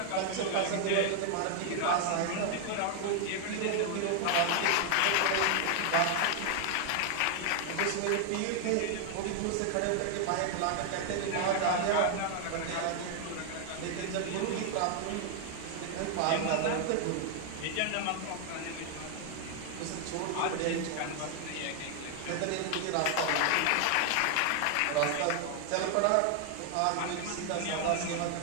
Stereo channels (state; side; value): different; both; correlation 0.00